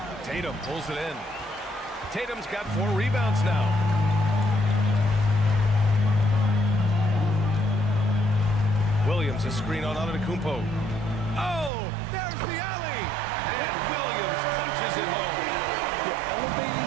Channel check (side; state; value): left; drops out; at 11.7 s